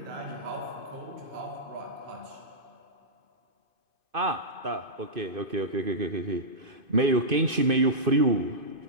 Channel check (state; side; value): late; left; 2.5 ms